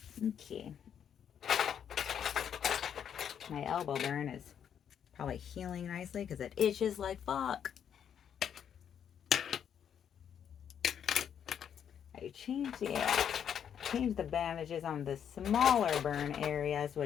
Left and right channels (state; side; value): quieter; right; 8.6 dB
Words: Okay. My elbow burn is probably healing nicely because it itches like fuck. I changed the bandages on the smaller burn areas,